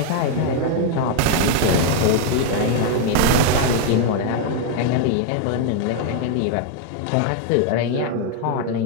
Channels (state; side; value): different; both; correlation 0.01